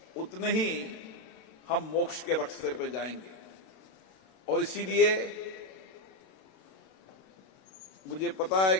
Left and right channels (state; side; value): late; right; 32 ms